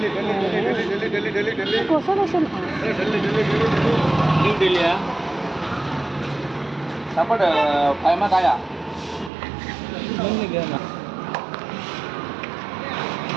कसं कसं न्यू दिल्ली सापड फायमा काया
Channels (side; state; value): left; drops out; at 9.3 s